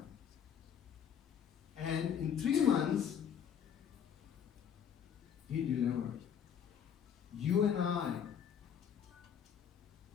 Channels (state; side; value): quieter; right; 8.3 dB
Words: And in 3 months, he delivered. You and I,